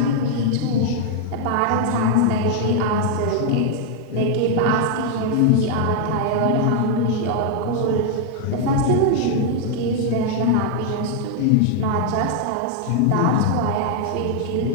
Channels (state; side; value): different; both; correlation 0.00